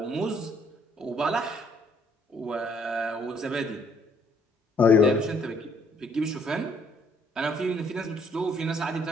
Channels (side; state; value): both; normal; correlation 0.65